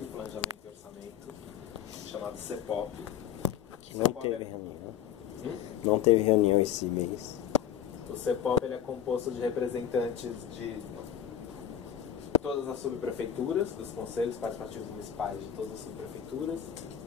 planejamento e orçamento, chamado CEPOP. Que não teve reunião. Não teve reunião esse mês. O CEPOP ele é composto de representantes de todas as subprefeituras, dos conselhos participativos municipais de todas as subprefeituras,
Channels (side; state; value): right; quieter; 9.3 dB